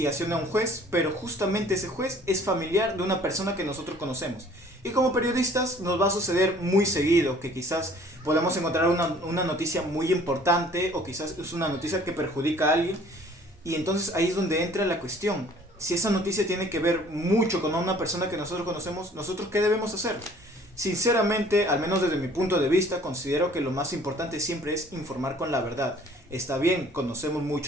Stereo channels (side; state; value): both; normal; correlation 0.54